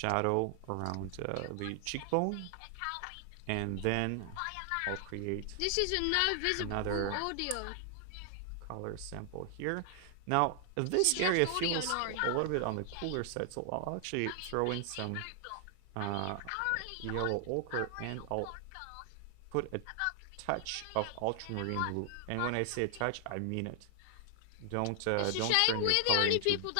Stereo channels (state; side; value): different; both; correlation 0.00